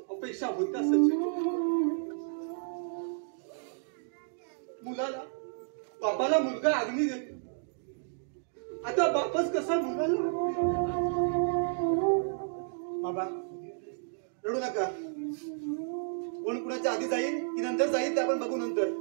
अपेक्षा होत्या सचिन. मुलाला बापाला मुलगा अग्नी देतो. आता बापच कसा मुलाला? बाबा रडू नका. कोण कुणाच्या आधी जाईल की नंतर जाईल ते आपण बघू नंतर.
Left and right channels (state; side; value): silent; left; digital silence